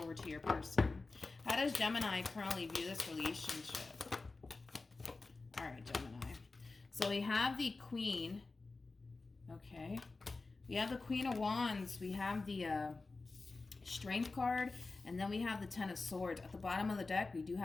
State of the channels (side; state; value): right; quieter; 3.7 dB